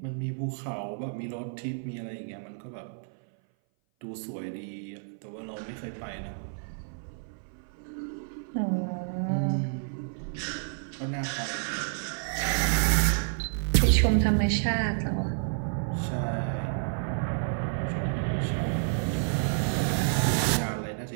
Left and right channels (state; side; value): silent; left; 57 dB below the other